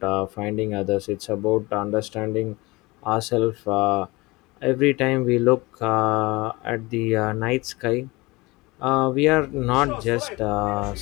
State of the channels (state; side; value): quieter; right; 22.9 dB